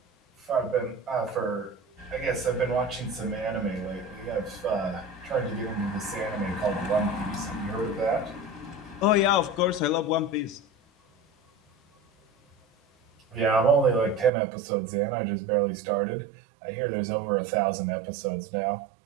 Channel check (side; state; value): left; drops out; at 14.3 s